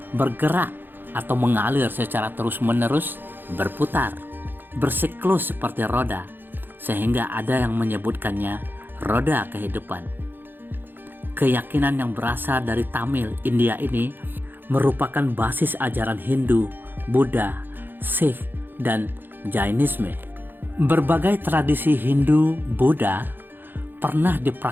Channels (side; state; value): left; late; 0.096 ms